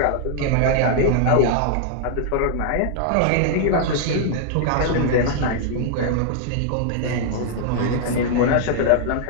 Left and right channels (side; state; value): both; different; correlation -0.01